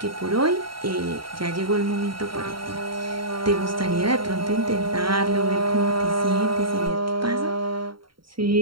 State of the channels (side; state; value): left; late; 0.73 ms